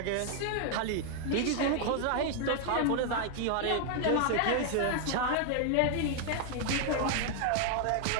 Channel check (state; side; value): different; both; correlation 0.00